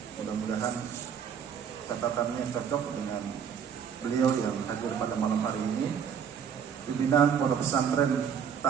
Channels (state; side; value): quieter; left; 7.7 dB